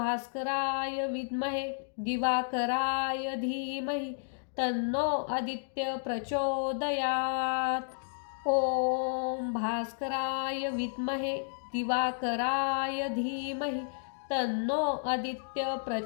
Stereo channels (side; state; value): right; silent; digital silence